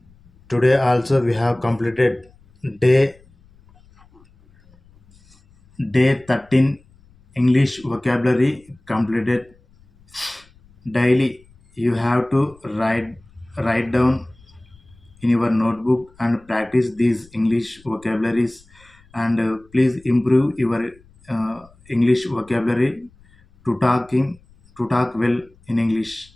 Today also we have completed day 13 English vocabulary completed. Daily you have to write down in your notebook and practice these English vocabularies, and please improve your English vocabulary to talk well in English.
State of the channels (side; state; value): left; noise; rumble, 29 dB below the sound